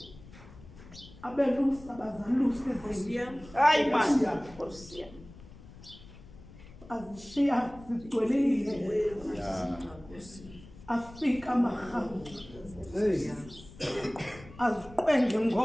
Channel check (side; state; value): left; noise; rumble, 19 dB below the sound